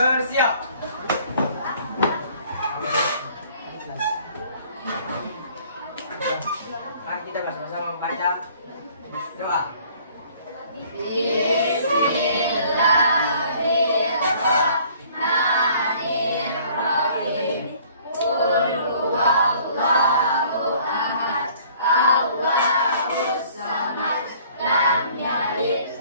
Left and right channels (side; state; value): both; inverted; correlation -0.56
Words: Mari kita bersama-sama membaca doa.